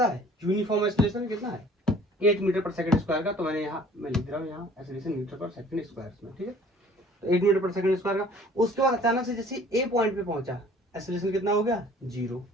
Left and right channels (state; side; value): normal; both; correlation 0.52